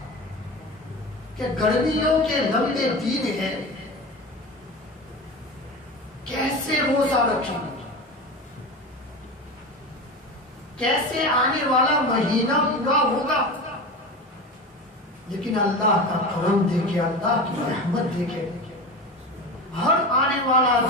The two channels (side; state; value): both; normal; correlation 0.28